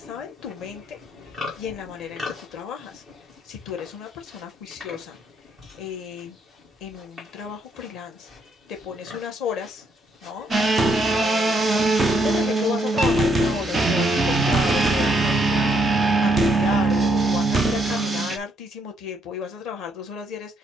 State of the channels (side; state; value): both; normal; correlation 0.73